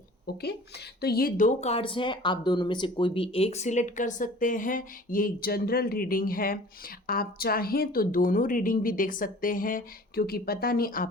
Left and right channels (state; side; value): normal; both; correlation 0.46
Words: ओके, तो ये दो कार्ड्स हैं, आप दोनों में से कोई भी एक सिलेक्ट कर सकते हैं। ये एक जनरल रीडिंग है, आप चाहें तो दोनों रीडिंग भी देख सकते हैं, क्योंकि पता नहीं